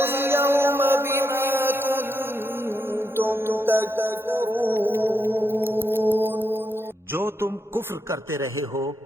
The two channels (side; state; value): both; normal; correlation 0.82